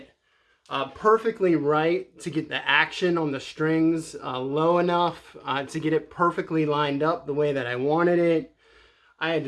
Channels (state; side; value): identical; both; correlation 1.00